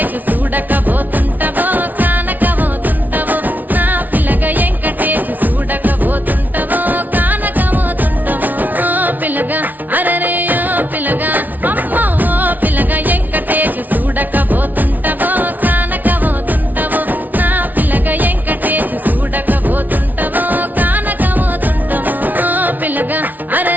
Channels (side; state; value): left; late; 0.080 ms